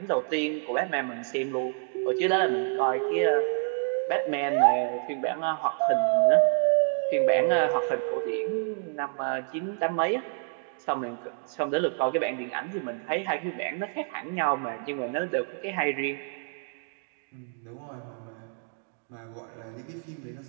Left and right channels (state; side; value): silent; left; 59 dB below the other